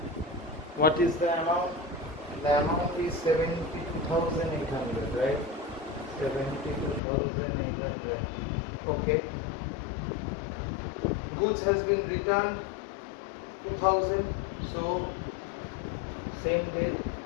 What is the amount? The amount is 72,800, right? 72,800. Okay. Goods has been returned 2,000. So same date,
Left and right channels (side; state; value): right; drops out; at 7.0 s